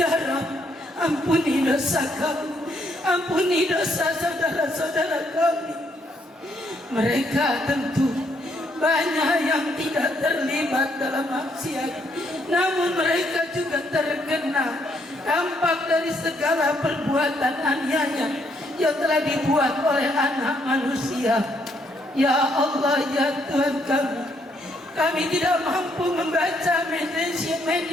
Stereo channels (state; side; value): normal; both; correlation 0.72